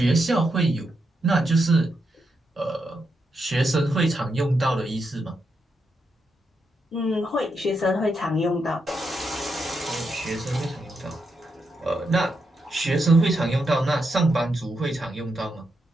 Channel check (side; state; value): both; normal; correlation 0.83